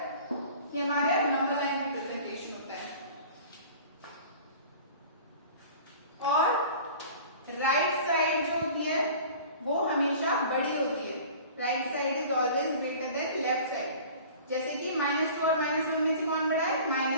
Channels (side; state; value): both; inverted; correlation -0.43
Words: ये हमारे नंबर लाइन रिप्रेजेंटेशन होता है। और राइट साइड जो होती है वो हमेशा बड़ी होती है। Right side is always greater than left side. जैसे कि -2 और -1 में से कौन बड़ा है?